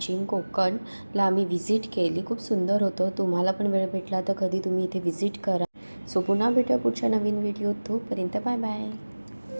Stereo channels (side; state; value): both; inverted; correlation -1.00